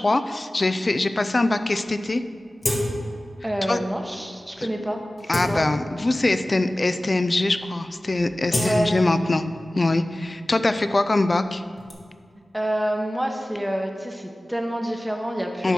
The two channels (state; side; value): normal; both; correlation 0.97